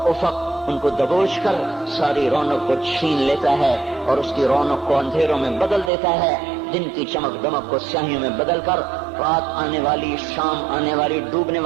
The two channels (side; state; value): left; drops out; at 5.9 s